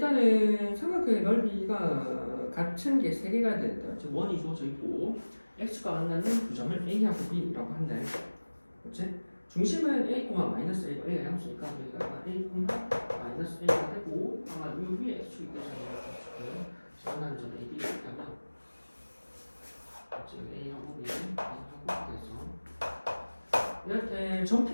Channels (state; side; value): inverted; both; correlation -1.00